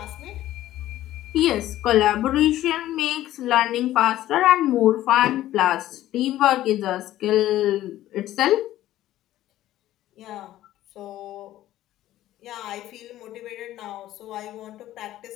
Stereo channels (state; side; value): quieter; right; 14.1 dB